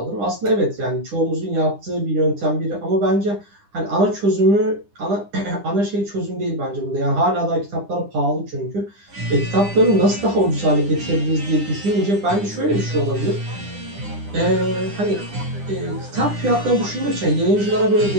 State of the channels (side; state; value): left; late; 10 ms